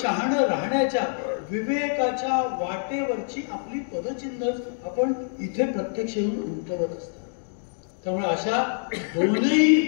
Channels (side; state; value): right; silent; digital silence